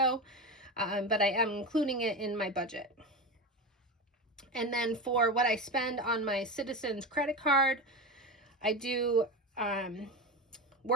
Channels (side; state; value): both; normal; correlation 0.21